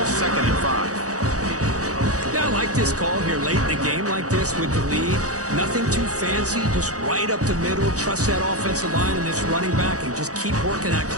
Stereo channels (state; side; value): late; left; 0.66 ms